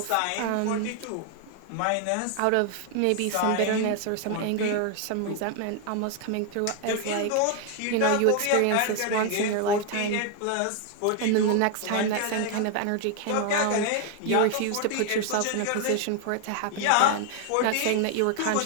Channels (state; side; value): different; both; correlation 0.00